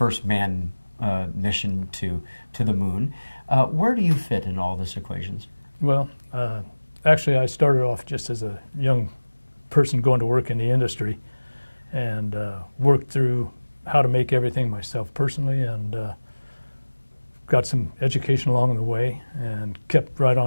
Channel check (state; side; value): inverted; both; correlation -1.00